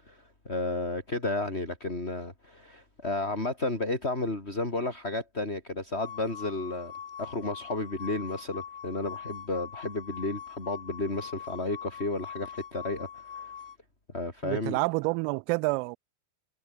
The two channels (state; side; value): late; right; 3.1 ms